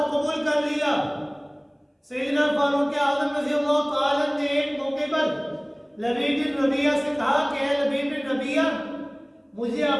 قبول کر لیا. سیدنا فاروق اعظم رضی اللہ تعالیٰ نے ایک موقع پر لبید بن ربیعہ سے کہا کہ اے لبید بن ربیعہ، مجھے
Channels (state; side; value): identical; both; correlation 1.00